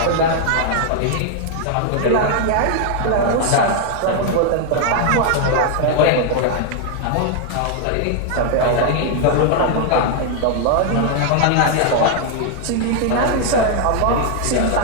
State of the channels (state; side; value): different; both; correlation 0.00